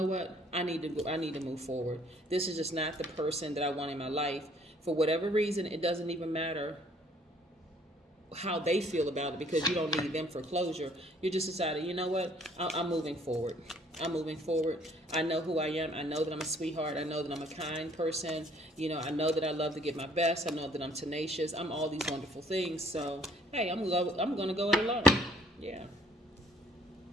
what, I need to move forward. This is just not the person that I want in my life. For whatever reason, it doesn't even matter how they feel about it, because you don't need them for closure. You just decided, you know what, I'm moving forward. I know who I am. I know that I'm a sweetheart. I know that I'm a kind person. You know, I know that I love to give my best. I know that I'm tenacious. I'm all these wonderful things. So, hey, I'm going to go it alone. Yeah.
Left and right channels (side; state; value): both; normal; correlation 0.60